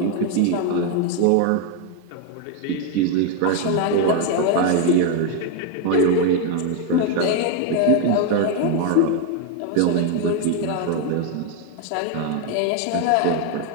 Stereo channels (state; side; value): different; both; correlation 0.01